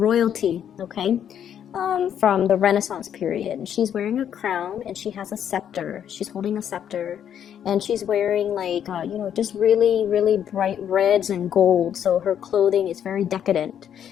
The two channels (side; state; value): right; quieter; 9.3 dB